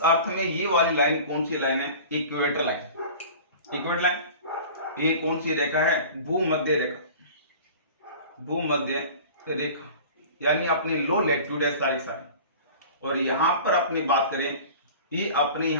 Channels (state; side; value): inverted; both; correlation -0.40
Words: अर्थ में ये वाली लाइन कौन सी लाइन है, इक्वेटर लाइन। इक्वेटर लाइन ये कौन सी रेखा है, भूमध्य रेखा, भूमध्य रेखा, यानी अपने लो लैटिट्यूड है सारे। और यहां पर अपनी बात करें, ये अपने